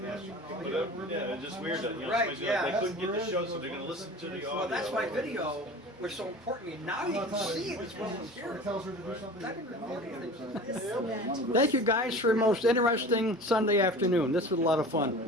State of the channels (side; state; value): both; normal; correlation 0.38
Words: But yeah, it's just weird that Right, somebody's gonna- yeah. they couldn't get the show, so they're gonna listen to the audio. Well, that's why video was so important to me. Now you can see me. It's Or tells her to do something. I've been recording things. This event. Thank you guys for a most interesting Sunday afternoon. This was a lot of fun.